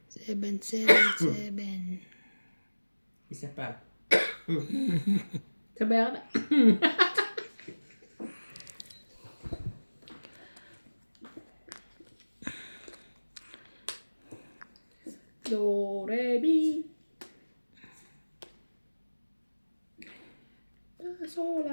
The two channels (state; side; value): inverted; both; correlation -1.00